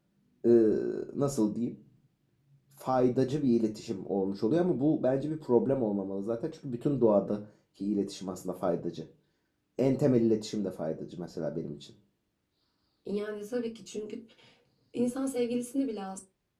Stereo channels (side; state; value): both; identical; correlation 1.00